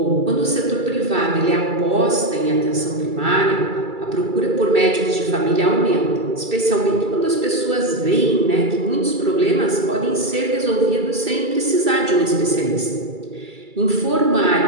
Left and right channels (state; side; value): late; left; 2.3 ms